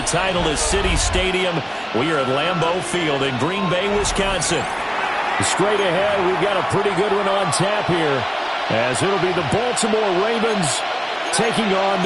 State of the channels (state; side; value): identical; both; correlation 1.00